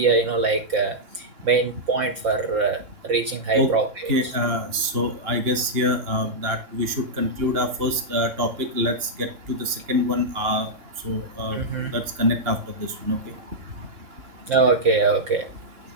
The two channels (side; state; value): left; late; 3.6 ms